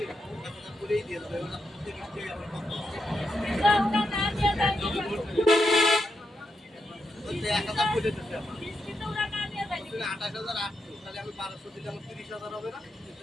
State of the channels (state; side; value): normal; both; correlation 0.84